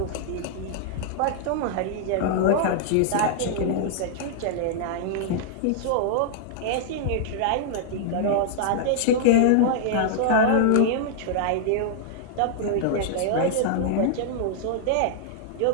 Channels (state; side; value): different; both; correlation -0.01